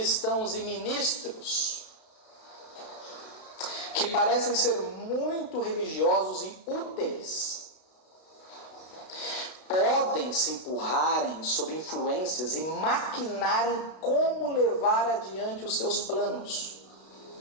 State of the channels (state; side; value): late; right; 32 ms